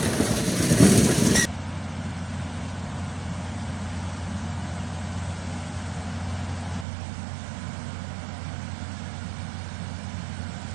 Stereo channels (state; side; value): drops out; left; at 6.9 s